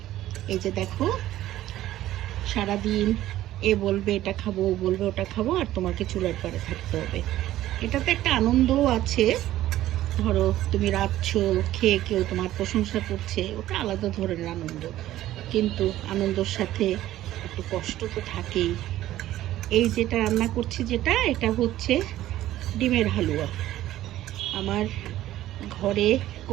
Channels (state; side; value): quieter; left; 14.1 dB